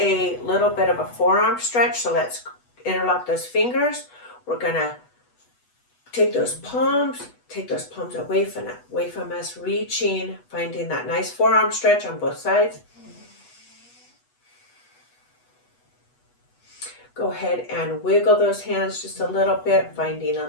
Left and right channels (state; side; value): late; right; 8.2 ms